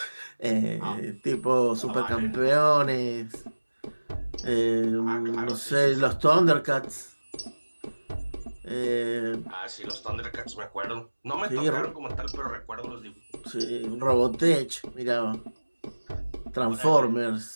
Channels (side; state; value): both; inverted; correlation -1.00